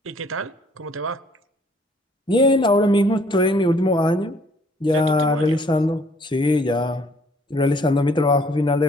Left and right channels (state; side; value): normal; both; correlation 0.61